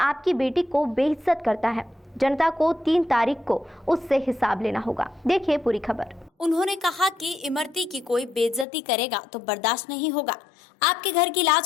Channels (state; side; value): drops out; right; at 8.7 s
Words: आपकी बेटी को बेइज्जत करता है। जनता को 3 तारीख को उससे हिसाब लेना होगा। देखिए पूरी खबर। उन्होंने कहा कि इमरती की कोई बेइज्जती करेगा तो बर्दाश्त नहीं होगा। आपके घर की